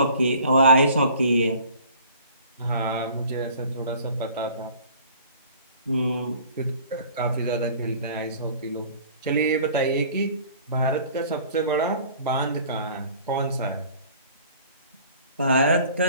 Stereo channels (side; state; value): both; inverted; correlation -0.50